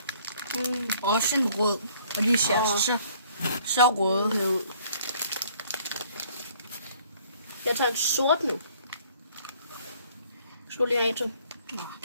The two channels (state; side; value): inverted; both; correlation -0.60